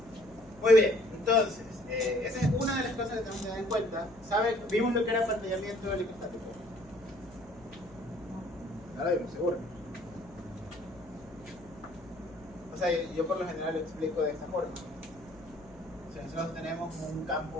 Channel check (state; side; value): noise; left; hum, 24 dB below the sound